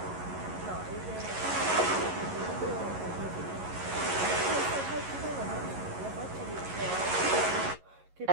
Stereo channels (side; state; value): left; late; 11 ms